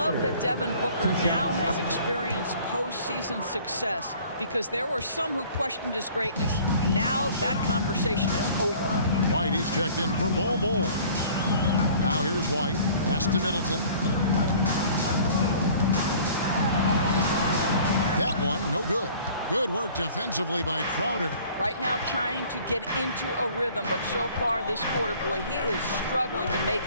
that Devin Booker now has experienced postseason success because there were some who questioned his greatness. Now that conversation is over. White, he's checked in for Bol. Now here's White. Pass to Middleton. That one, no good. Good work defensively by Crowder. Right now trying to get into a rhythm, but so far this quarter, boy, he is struggling to make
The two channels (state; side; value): inverted; both; correlation -0.50